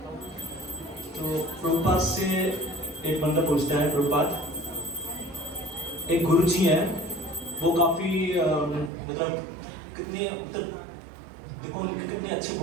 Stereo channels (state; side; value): drops out; left; at 8.9 s